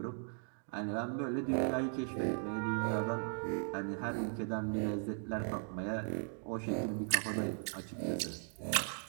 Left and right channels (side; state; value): left; silent; 52 dB below the other